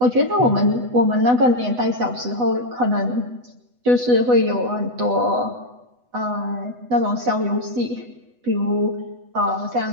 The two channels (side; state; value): left; late; 8.1 ms